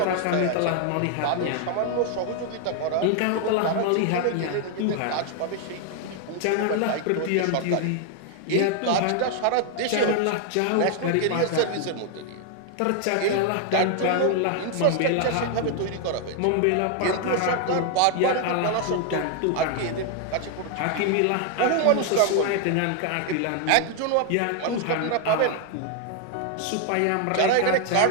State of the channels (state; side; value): different; both; correlation 0.00